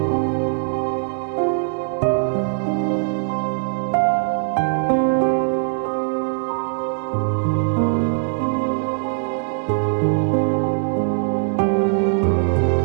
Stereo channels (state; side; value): silent; left; digital silence